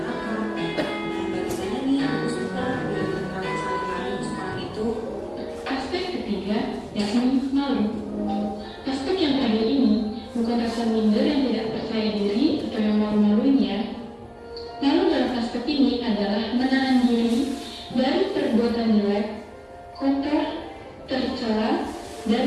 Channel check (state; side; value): identical; both; correlation 1.00